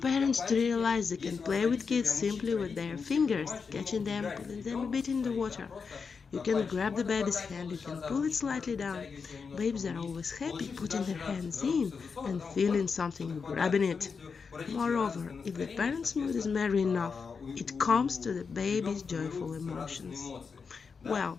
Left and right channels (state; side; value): quieter; right; 5.4 dB